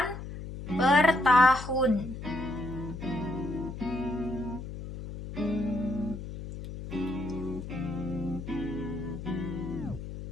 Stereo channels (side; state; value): left; noise; hum, 9 dB below the sound